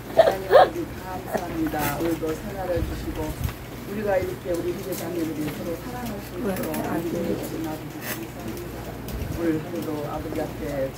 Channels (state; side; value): identical; both; correlation 1.00